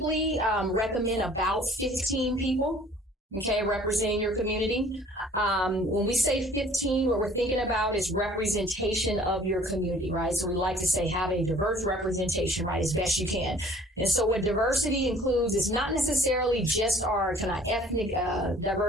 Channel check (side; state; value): both; normal; correlation 0.53